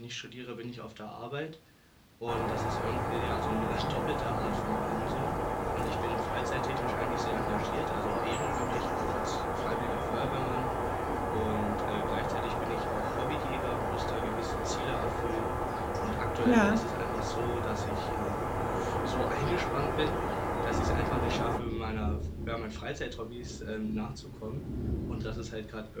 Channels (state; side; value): identical; both; correlation 1.00